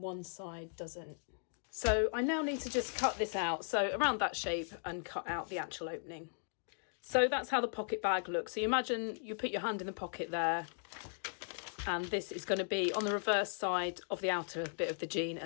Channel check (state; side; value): silent; right; digital silence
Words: one side doesn't. So I now need to just cut this out, so around that shape, and cut out the actual opening. So that's how the pocket bag looks. So you imagine you put your hand in the pocket there, and this is going to be on the reverse side of the outer bit of the jean,